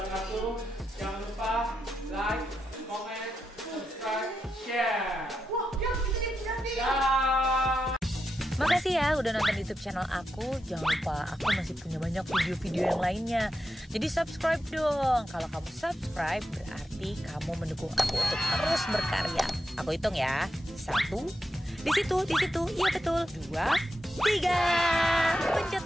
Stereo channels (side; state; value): both; normal; correlation 0.87